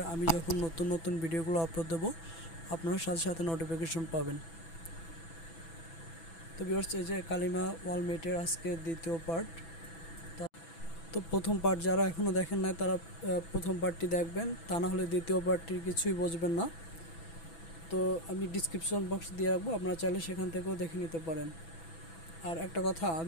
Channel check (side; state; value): right; late; 6.1 ms